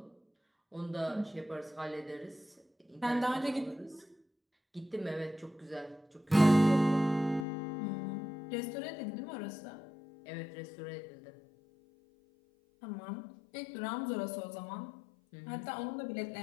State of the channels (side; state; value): right; drops out; at 7.5 s